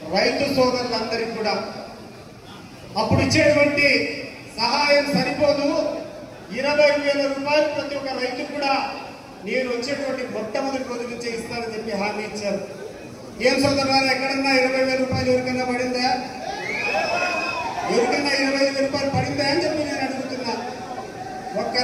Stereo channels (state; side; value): identical; both; correlation 1.00